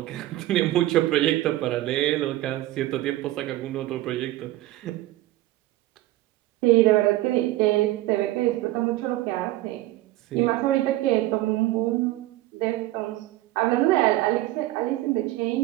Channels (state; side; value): quieter; left; 16.5 dB